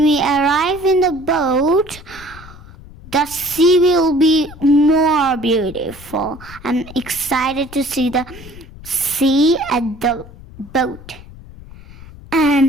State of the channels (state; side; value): noise; left; rumble, 18 dB below the sound